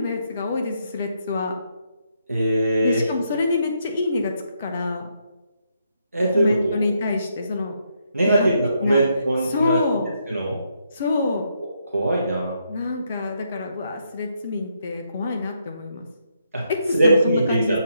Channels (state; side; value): inverted; both; correlation -0.77